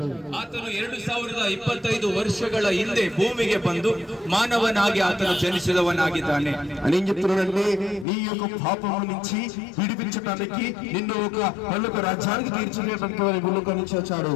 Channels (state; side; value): drops out; right; at 8.1 s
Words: ಆತನು 2025 ವರ್ಷಗಳ ಹಿಂದೆ ಭೂಮಿಗೆ ಬಂದು ಮಾನವನಾಗಿ ಆತನು ಜನಿಸಿದವನಾಗಿದ್ದಾನೆ. అని ఏం చెప్తున్నాడంటే నీ యొక్క పాపం నుంచి విడిపించడానికి నిన్ను ఒక పరలోక రాజ్యానికి తీర్చివేయడానికి భూలోకం నుంచి వచ్చాడు.